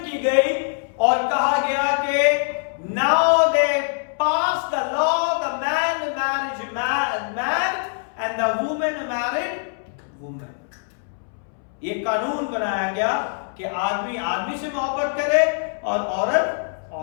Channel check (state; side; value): silent; right; 63 dB below the other